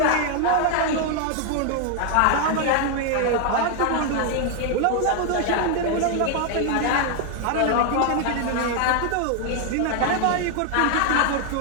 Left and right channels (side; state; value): both; different; correlation 0.00